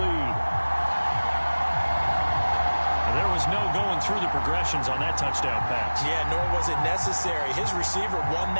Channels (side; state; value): both; inverted; correlation -1.00